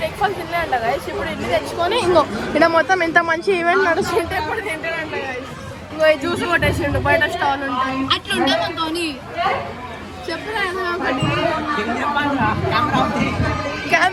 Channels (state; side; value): identical; both; correlation 1.00